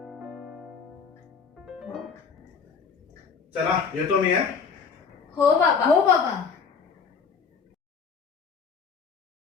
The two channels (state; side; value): quieter; right; 5.8 dB